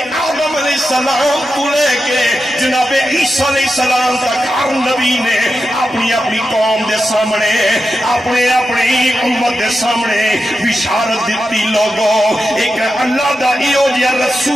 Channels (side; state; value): both; normal; correlation 0.89